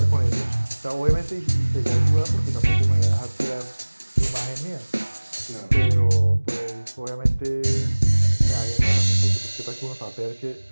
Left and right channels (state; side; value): inverted; both; correlation -1.00